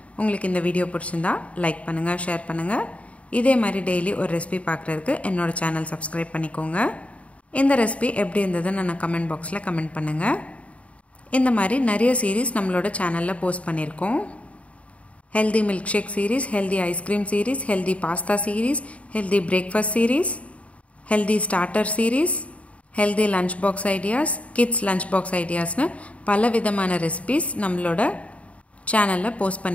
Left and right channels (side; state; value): right; late; 0.065 ms